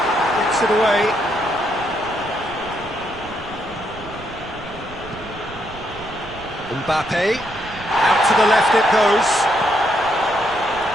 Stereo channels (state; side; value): noise; right; rumble, 17 dB below the sound